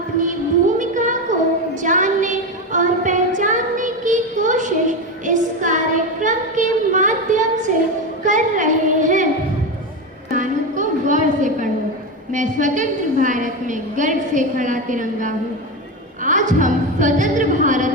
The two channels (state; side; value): normal; both; correlation 0.16